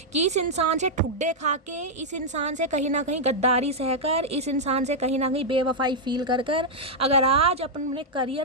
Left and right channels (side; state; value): both; normal; correlation -0.05